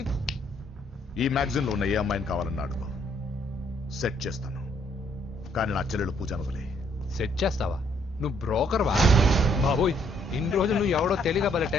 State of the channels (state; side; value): normal; both; correlation 0.68